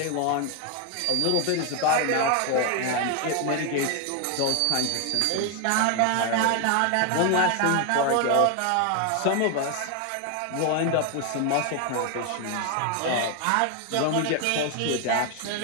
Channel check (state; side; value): different; both; correlation 0.01